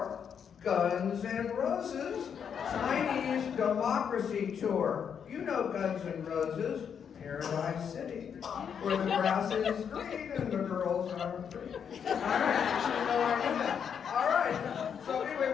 Guns N' Roses' Chinese Democracy Tour. You know Guns N' Roses, Paradise City, where the grass is green and the girls are free. All right, all right. So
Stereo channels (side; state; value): right; quieter; 7.5 dB